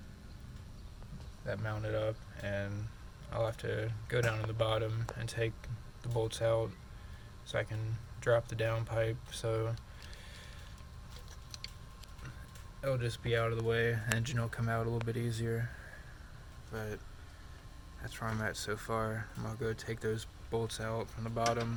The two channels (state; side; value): identical; both; correlation 1.00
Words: that mount it up, and I'll have to go down to the bottom and take the bolts out so I can drop the downpipe, so it'll just be out of the way. The engine will come out a little bit easier, but that's where I'm at so far. I'm gonna go take those bolts out from the